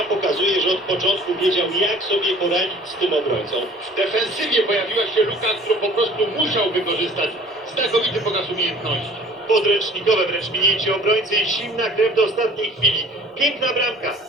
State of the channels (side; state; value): both; normal; correlation 0.49